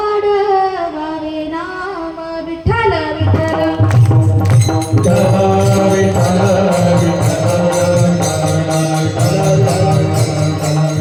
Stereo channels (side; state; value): both; identical; correlation 1.00